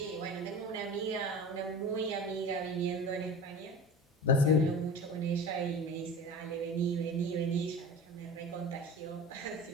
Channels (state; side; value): normal; both; correlation 0.34